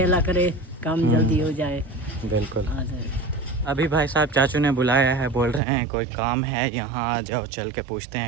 अल्लाह करे काम जल्दी हो जाए। बिल्कुल। अभी भाई साहब चाचू ने बुलाया है, बोल रहे हैं कोई काम है यहाँ आ जाओ, चल के पूछते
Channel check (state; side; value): drops out; left; at 5.6 s